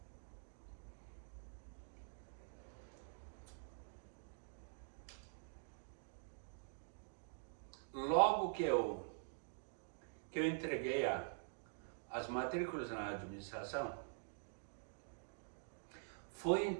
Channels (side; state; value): left; silent; digital silence